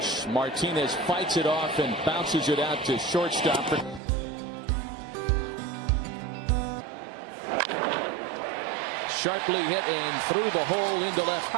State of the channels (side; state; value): left; drops out; at 4.0 s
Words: Martinez fights it off and bounces it out to shortstop. Sharply hit and through the hole into left.